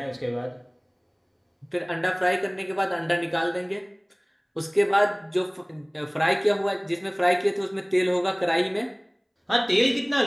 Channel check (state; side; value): identical; both; correlation 1.00